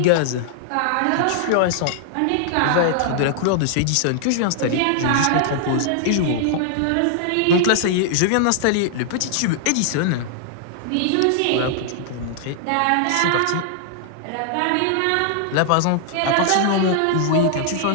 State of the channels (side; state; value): both; different; correlation -0.01